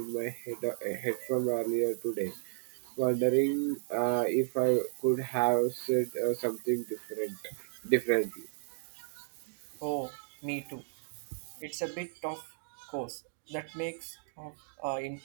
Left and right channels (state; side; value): silent; left; digital silence